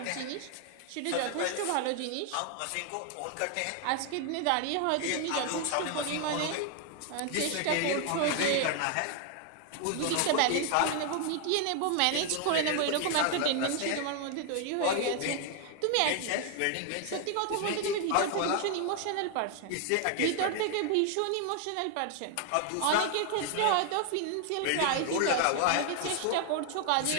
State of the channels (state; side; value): different; both; correlation 0.00